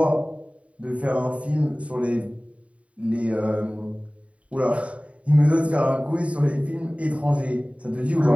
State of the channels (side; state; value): left; late; 0.065 ms